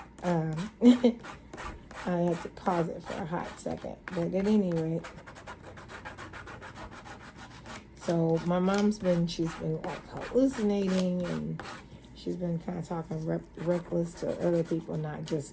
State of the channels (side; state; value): both; identical; correlation 1.00